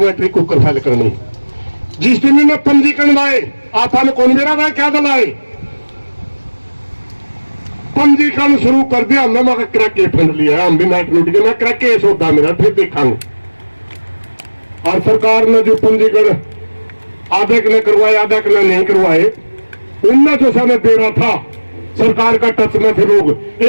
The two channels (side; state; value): both; inverted; correlation -1.00